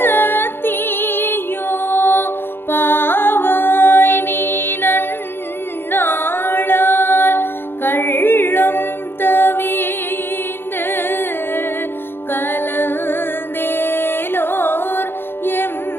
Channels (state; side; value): late; right; 0.10 ms